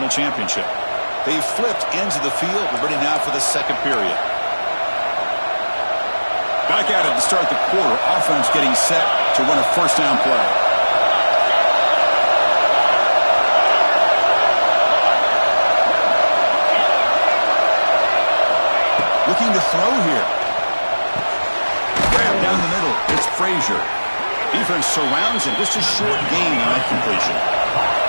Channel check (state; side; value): inverted; both; correlation -1.00